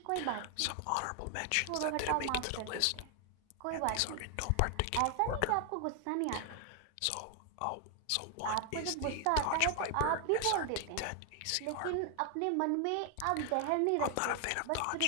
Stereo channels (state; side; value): different; both; correlation 0.00